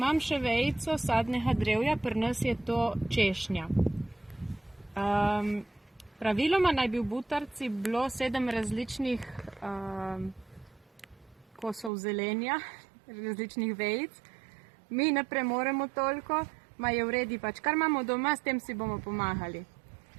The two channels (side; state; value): left; drops out; at 11.9 s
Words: še vejico sadnega drevja, pri nas je to češnja. Praviloma naj bi v butarici bilo 7 različnih kosov zelenja, različnih vejic. Mi ne premoremo toliko, ma je v redu pač, kar imamo doma, s tem si bomo pomagali.